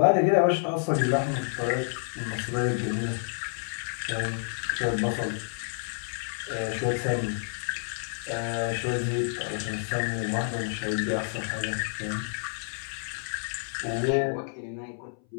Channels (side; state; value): right; silent; 57 dB below the other